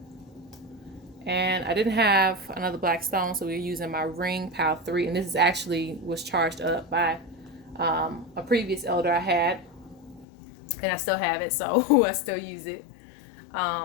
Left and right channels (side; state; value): right; drops out; at 10.2 s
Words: And I didn't have another black stone, so we're using my ring, pile 3. And this is actually was charged up by a previous elder I had. And I still have it, so I still use it.